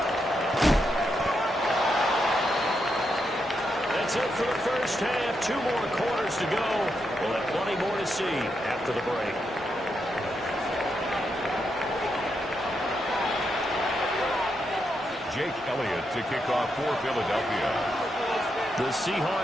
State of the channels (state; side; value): normal; both; correlation 0.82